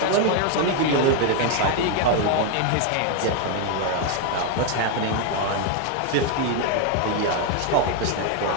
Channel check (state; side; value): different; both; correlation 0.01